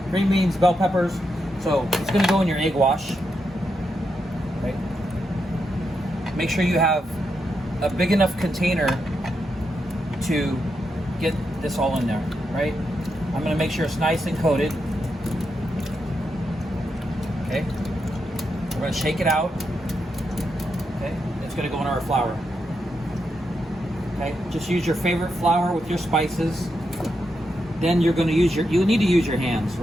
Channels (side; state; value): both; normal; correlation 0.84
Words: green beans, bell peppers. So it's going to go in your egg wash. Right? Make sure you have a big enough container to get this all in there, right? I'm going to make sure it's nice and coated. Okay. We're going to shake it out. Okay. It's going to go in our flour. Okay. Just use your favorite flour with your spices. Then you're going to use you need to use your hands,